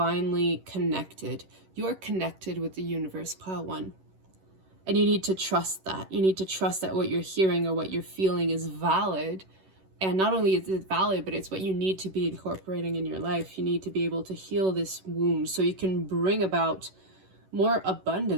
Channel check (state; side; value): late; left; 11 ms